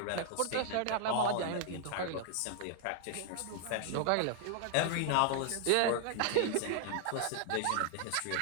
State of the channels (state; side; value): different; both; correlation 0.00